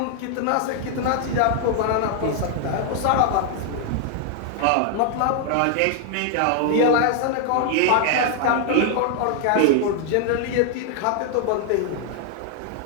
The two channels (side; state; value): both; different; correlation 0.00